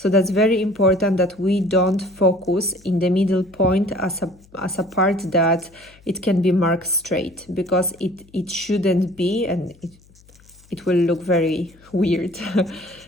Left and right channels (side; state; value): left; noise; hum, 28 dB below the sound